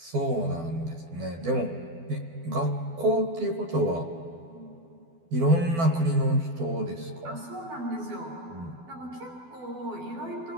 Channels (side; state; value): left; late; 12 ms